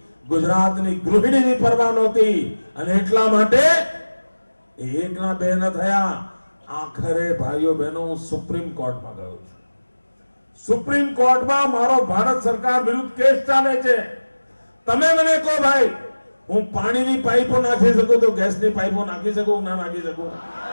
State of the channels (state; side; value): inverted; both; correlation -1.00